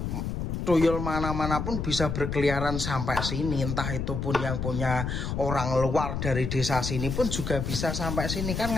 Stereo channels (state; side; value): noise; left; rumble, 3 dB below the sound